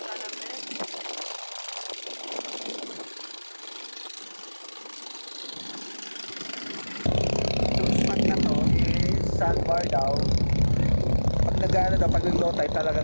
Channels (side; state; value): both; inverted; correlation -1.00